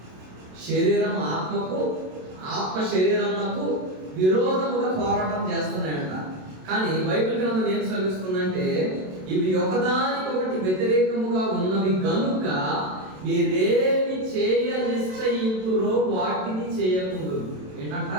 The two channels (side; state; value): left; late; 27 ms